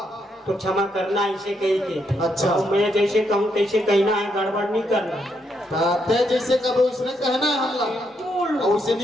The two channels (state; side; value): normal; both; correlation 0.78